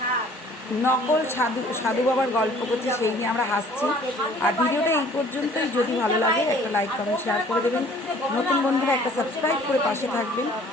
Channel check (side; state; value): both; normal; correlation 0.54